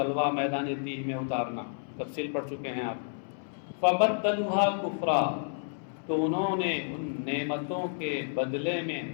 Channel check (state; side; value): silent; right; 57 dB below the other